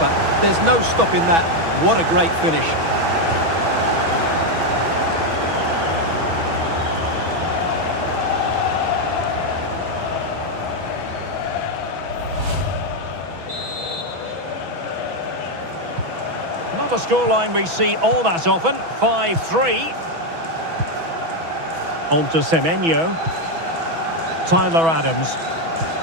There's no stopping that. What a great finish. Not a scoreline we see all that often. 5-3. On to Semenyo. Tyler Adams.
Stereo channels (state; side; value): late; left; 6.1 ms